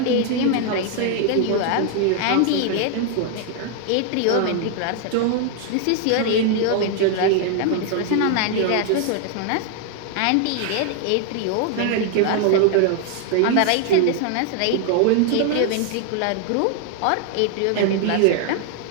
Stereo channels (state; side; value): different; both; correlation 0.00